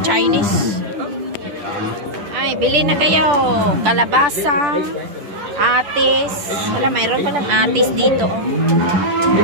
Chinese. Ay, bili na kayo. Kalabasa, atis. Wala, mayroon palang atis dito.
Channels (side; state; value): left; late; 10 ms